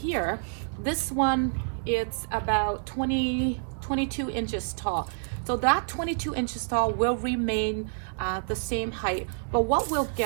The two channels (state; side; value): silent; left; digital silence